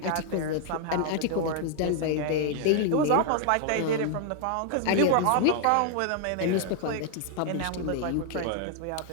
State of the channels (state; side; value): different; both; correlation 0.00